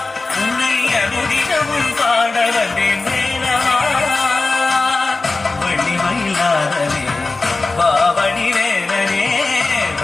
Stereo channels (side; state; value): right; quieter; 3.5 dB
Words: உன்னை அனுதினமும் பாட வந்தேன் வேலவா. வள்ளிமயிலாதனே பாவடி வேலனே,